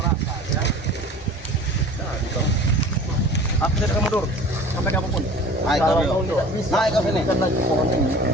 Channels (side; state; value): both; normal; correlation 0.42